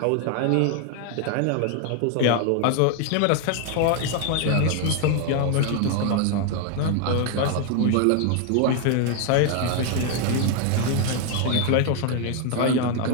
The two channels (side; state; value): both; different; correlation 0.00